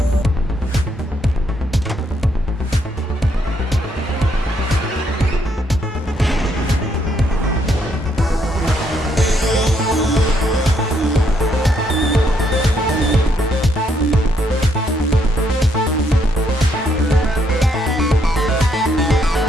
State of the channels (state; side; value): normal; both; correlation 0.73